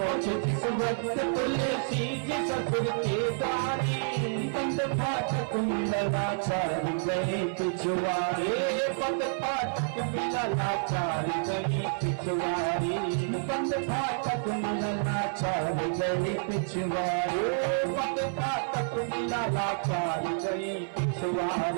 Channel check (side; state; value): left; silent; 57 dB below the other